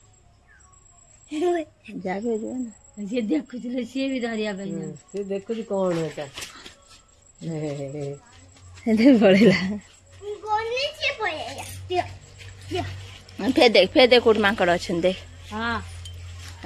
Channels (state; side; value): identical; both; correlation 1.00